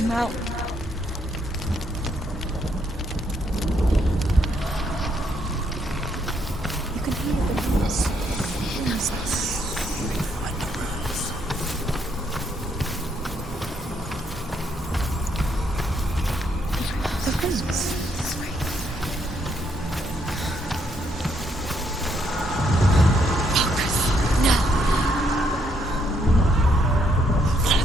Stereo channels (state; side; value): normal; both; correlation 0.74